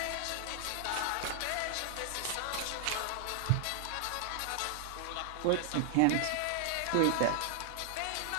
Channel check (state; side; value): different; both; correlation 0.00